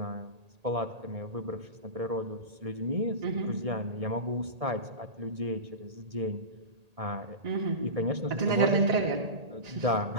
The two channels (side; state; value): left; late; 1.8 ms